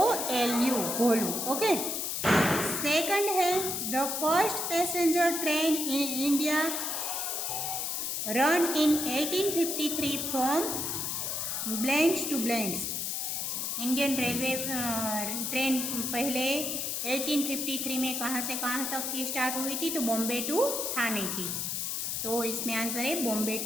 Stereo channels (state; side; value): noise; left; hiss, 2 dB below the sound